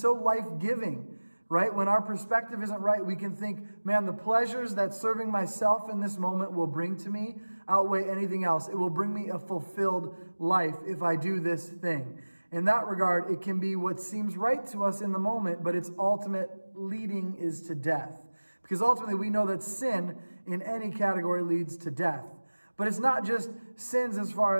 life-giving, right? When our perspective isn't right, we can think, man, the pleasures that serving myself in this moment will bring to me outweigh anything else. It will bring me a fulfilled life if I do this thing. In that regard, it can be what seems right to us in the moment, but its ultimate leading is to death. Because ultimately we know that sin in any category leads to death. But it's not just sins as far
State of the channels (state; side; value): inverted; both; correlation -1.00